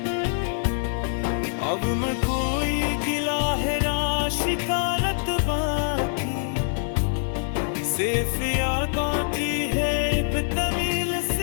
अब मैं कोई गिला है शिकारत बाकी, सिर्फ याद आती है तमील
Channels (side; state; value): right; silent; digital silence